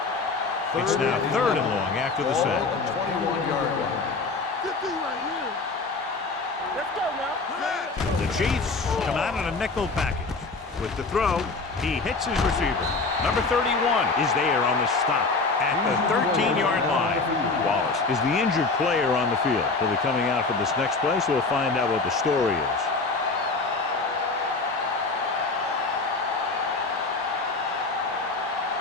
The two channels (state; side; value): quieter; right; 3.9 dB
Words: It's now 3rd and long after the sack. 21-yard line. Good thing right here. Let's go now. The Chiefs come out in a nickel package. With the throw, he hits his receiver. Number 31 is there on the stop at the 13-yard line. Wallace is the injured player on the field. He'll be coming out for this next play, so we'll find out what the story is.